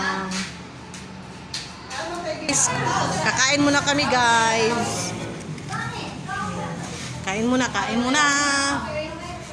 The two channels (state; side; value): identical; both; correlation 1.00